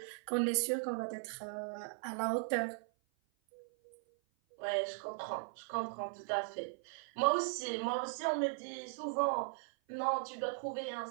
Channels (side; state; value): left; silent; 52 dB below the other